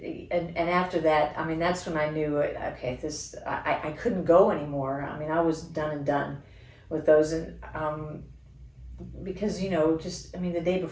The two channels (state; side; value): identical; both; correlation 1.00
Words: And after that, that's when I knew, okay, I couldn't go anymore. I was done and done with those. And because, the day